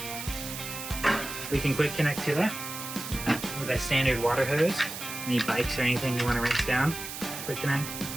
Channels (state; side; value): noise; right; hiss, 8 dB below the sound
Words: We can quick connect to that with a standard water hose. Any bikes or anything you want to rinse down, quick connect,